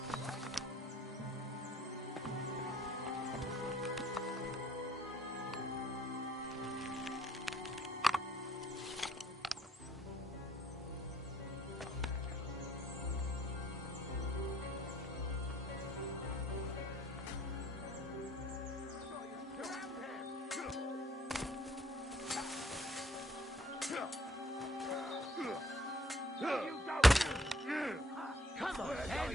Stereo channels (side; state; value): both; normal; correlation 0.63